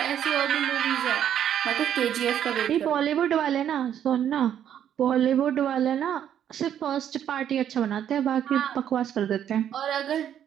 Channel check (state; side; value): quieter; left; 9.9 dB